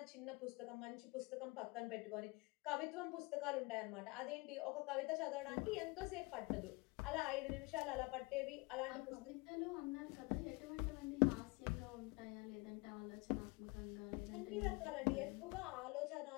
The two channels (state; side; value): quieter; right; 26.6 dB